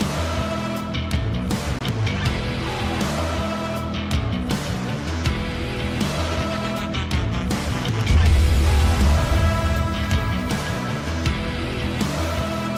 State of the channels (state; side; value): identical; both; correlation 1.00